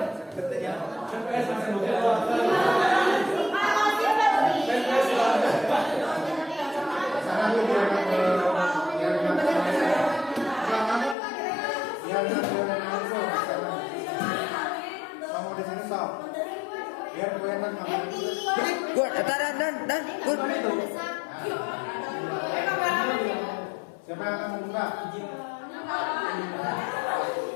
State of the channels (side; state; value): right; drops out; at 11.2 s